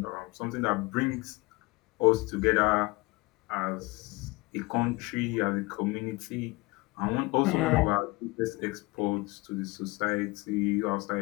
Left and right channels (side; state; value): right; quieter; 23.8 dB